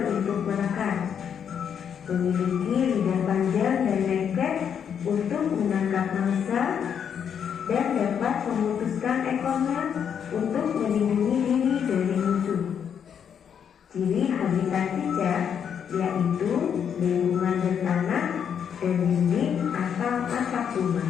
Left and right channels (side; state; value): right; quieter; 8.0 dB